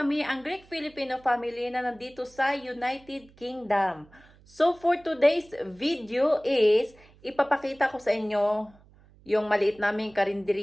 ang Greek Filipino family na nandito sa United Kingdom. So for today's video is ipapakita ko sa inyo yung maliit naming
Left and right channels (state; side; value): noise; right; hum, 27 dB below the sound